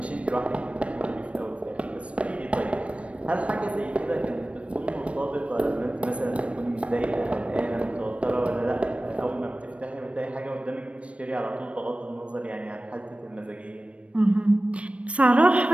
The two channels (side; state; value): left; late; 0.062 ms